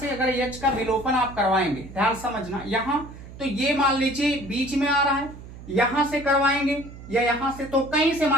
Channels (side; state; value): right; noise; hum, 15 dB below the sound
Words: अगर H का विलोपन आप करवाएंगे, ध्यान समझना, यहां तो ये मान लीजिए बीच में आ रहा है, यहां से करवाएंगे या यहां से, तो कहीं से